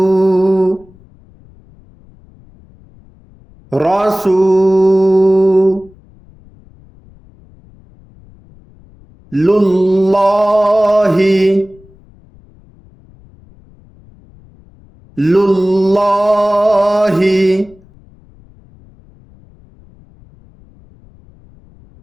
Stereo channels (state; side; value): noise; left; rumble, 27 dB below the sound